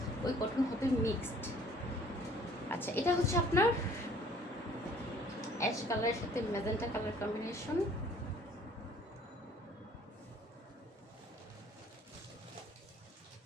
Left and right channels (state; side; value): normal; both; correlation 0.55